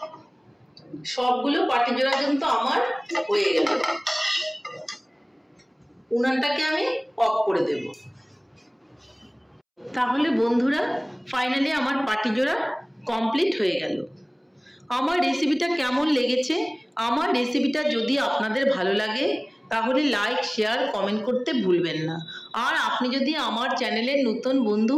সবগুলো পাটিজোড়া কিন্তু আমার হয়ে গেল। উনানটাকে আমি অফ করে দেব। তাহলে বন্ধুরা ফাইনালি আমার পাটিজোড়া কমপ্লিট হয়ে গেল। আমার রেসিপিটা কেমন লেগেছে? আমার রেসিপিটা যদি আপনাদের ভালো লাগে তাহলে লাইক, শেয়ার, কমেন্ট করতে ভুলবেন না। আর আপনি যদি আমার চ্যানেলের নতুন বন্ধু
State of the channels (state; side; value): identical; both; correlation 1.00